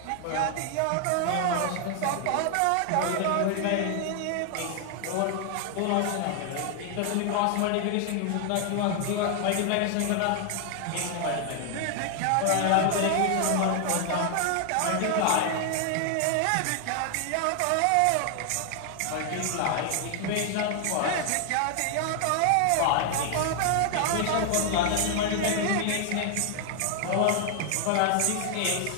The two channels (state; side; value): different; both; correlation 0.00